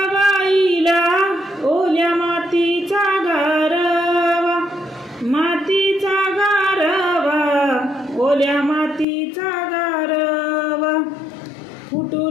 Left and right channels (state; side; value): drops out; right; at 9.1 s